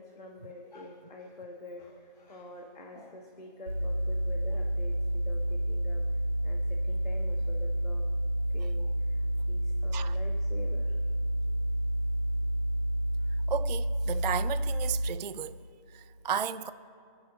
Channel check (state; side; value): inverted; both; correlation -0.88